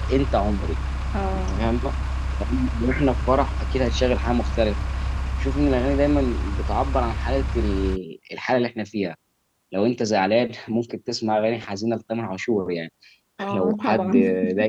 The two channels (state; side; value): identical; both; correlation 1.00